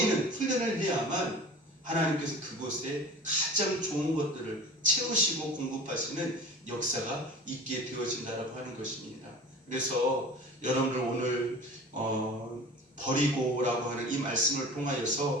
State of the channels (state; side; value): normal; both; correlation 0.39